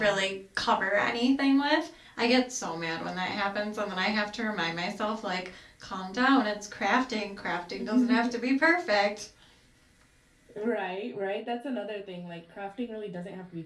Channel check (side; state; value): both; identical; correlation 1.00